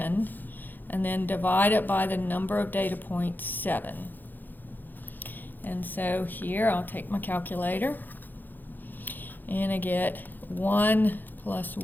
and then divide it by the number of data points, 7. And so here I'll take my calculator, and I get 1 plus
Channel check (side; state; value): right; late; 0.088 ms